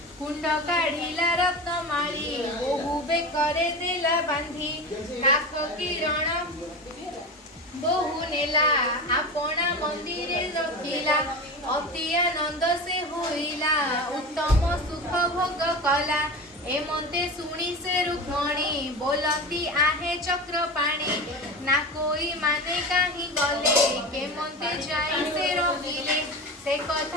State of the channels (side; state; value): both; normal; correlation 0.28